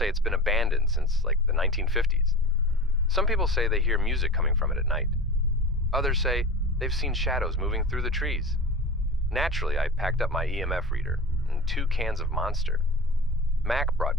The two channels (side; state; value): both; normal; correlation 0.31